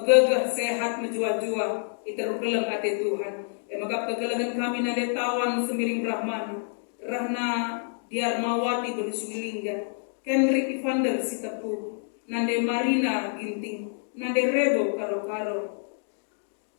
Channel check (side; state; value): right; silent; digital silence